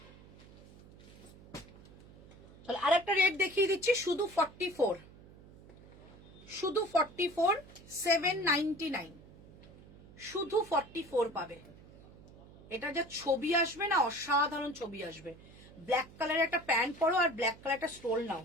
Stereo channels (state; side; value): noise; right; hum, 21 dB below the sound